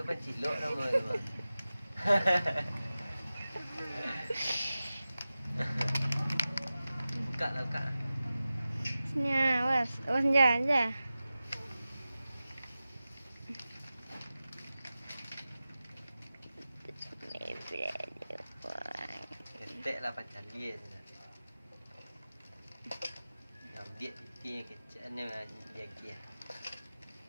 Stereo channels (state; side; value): inverted; both; correlation -0.95